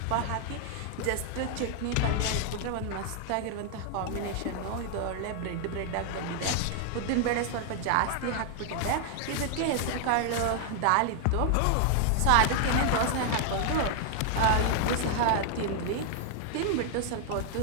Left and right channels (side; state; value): both; different; correlation 0.00